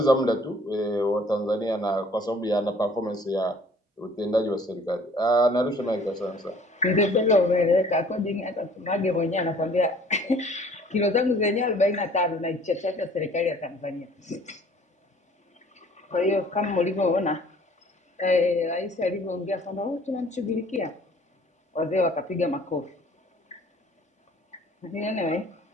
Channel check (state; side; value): normal; both; correlation 0.54